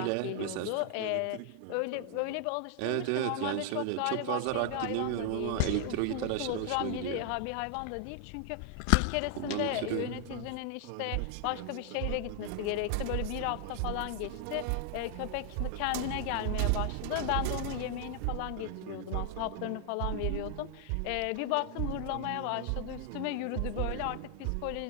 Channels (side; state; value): both; different; correlation 0.00